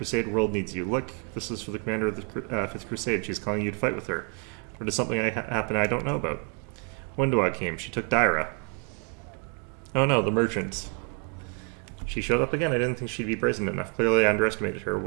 world needs you. Look, this is for the commander of the 5th Crusade. She's calling you to fight with her. Or does something happen I don't know about? Wendua came. She took Daira. Oh no, the merchant. She showed up again. I didn't think she'd be brazen enough. Clearly I underestimated her.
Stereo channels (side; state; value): left; quieter; 35.7 dB